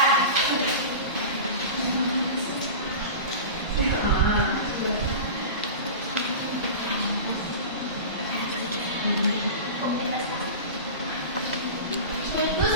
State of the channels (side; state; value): both; inverted; correlation -0.30